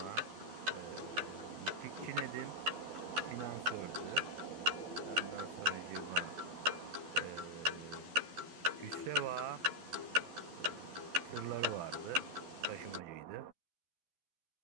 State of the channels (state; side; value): late; left; 12 ms